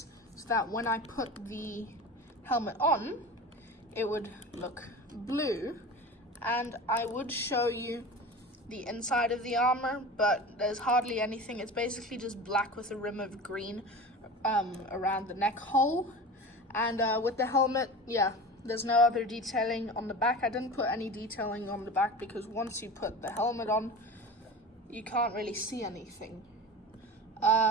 so that when I put the helmet on, it would look blue. And I would show you the inside of the armor, but there's hardly anything. It's basically just black with a rim of green around the neck hole. And with the helmet, yeah, There's no other detailing on the back. I didn't put any detailing on the back because once you put the helmet on, you can't really see anything.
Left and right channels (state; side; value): normal; both; correlation 0.33